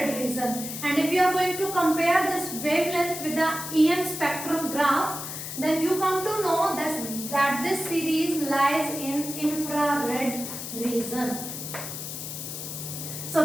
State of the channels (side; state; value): left; noise; hiss, 7 dB below the sound